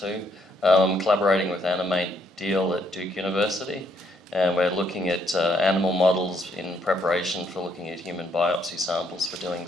I'm collaborating with Animate Deal at Duke University, and we're looking at animal models in preparation for looking at human biopsy samples for doing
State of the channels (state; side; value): normal; both; correlation 0.71